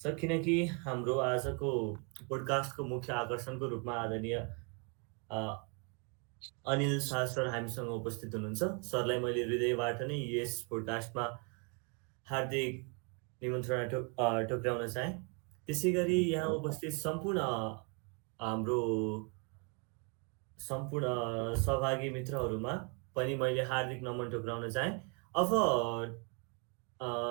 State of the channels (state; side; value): quieter; left; 36.3 dB